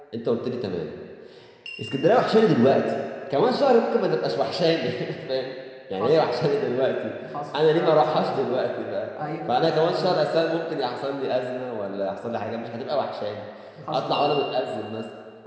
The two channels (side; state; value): both; identical; correlation 1.00